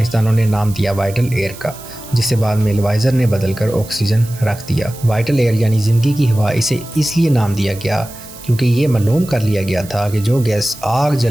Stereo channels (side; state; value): right; noise; hiss, 17 dB below the sound